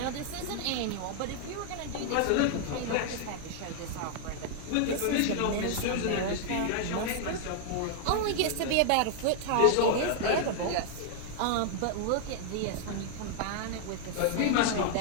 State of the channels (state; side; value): different; both; correlation 0.00